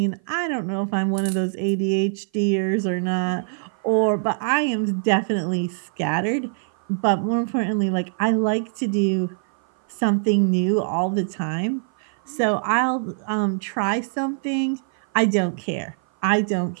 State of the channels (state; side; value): silent; left; 55 dB below the other